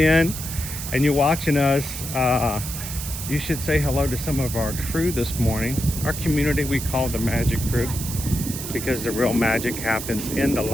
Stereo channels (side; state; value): right; noise; hiss, 7 dB below the sound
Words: and you're watching us, you should say hello to some of our crew this morning. Our community we call the Magic Crew, because the real magic happens in the